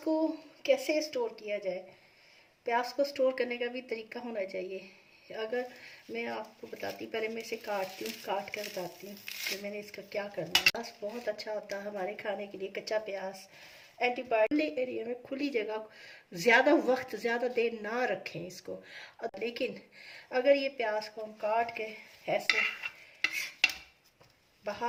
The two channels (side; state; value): both; identical; correlation 1.00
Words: कैसे स्टोर किया जाए? प्याज को स्टोर करने का भी तरीका होना चाहिए। अगर मैं आपको बताती, पहले मैं इसे काटती हूँ, काट कर बताती हूँ कि मैंने इसका क्या करना है। प्याज बहुत अच्छा होता है हमारे खाने के लिए। कच्चा प्याज एंटीबायोटिक एरिया में, खुली जगह, ज़्यादा वक्त ज़्यादा देर ना रखें इसको। लेकिन अगर ये प्याज को हम काट के ऐसे